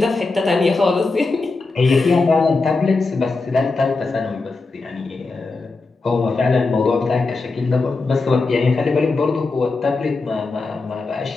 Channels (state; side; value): quieter; right; 3.7 dB